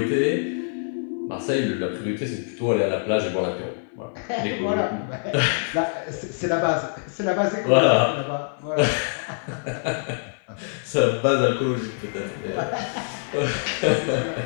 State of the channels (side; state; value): right; silent; digital silence